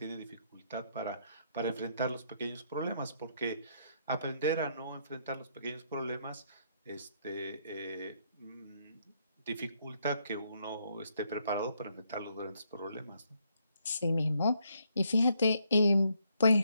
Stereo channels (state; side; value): inverted; both; correlation -0.73